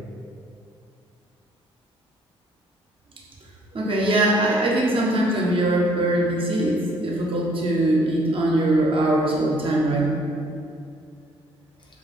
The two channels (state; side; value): normal; both; correlation 0.62